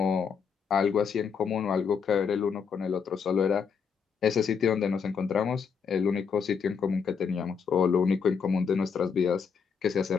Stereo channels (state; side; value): quieter; right; 6.3 dB